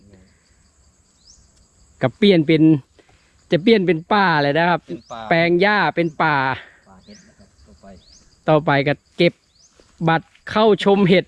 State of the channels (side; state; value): both; identical; correlation 1.00